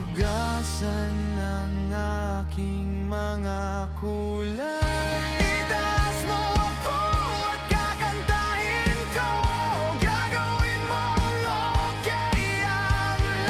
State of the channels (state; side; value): identical; both; correlation 1.00